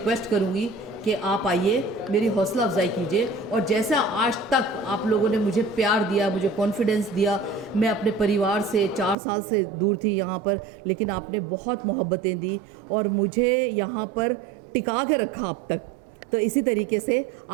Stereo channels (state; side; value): drops out; left; at 9.2 s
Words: करूँगी कि आप आइए, मेरी हौसला अफजाई कीजिए, और जैसा आज तक आप लोगों ने मुझे प्यार दिया, मुझे कॉन्फिडेंस दिया, मैं अपने परिवार से 4 साल से दूर थी यहाँ पर, लेकिन आपने बहुत मोहब्बतें दी और मुझे यहाँ पर टिका के रखा अब तक। तो इसी तरीके से